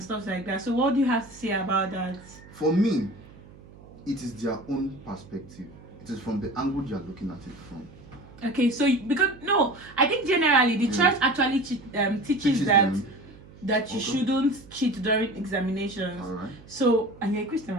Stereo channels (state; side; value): noise; right; hum, 21 dB below the sound